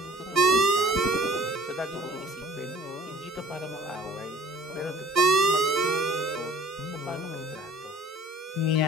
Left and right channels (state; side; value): normal; both; correlation 0.52